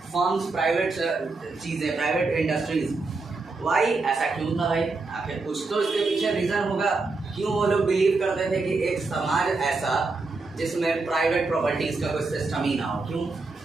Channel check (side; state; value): left; quieter; 3.7 dB